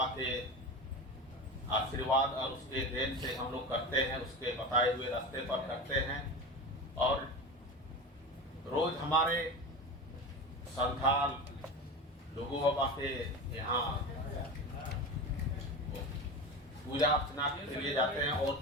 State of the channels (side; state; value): both; normal; correlation 0.26